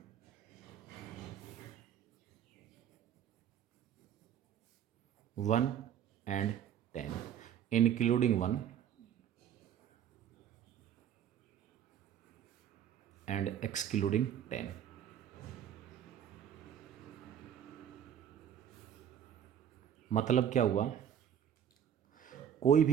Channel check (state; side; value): quieter; left; 9.4 dB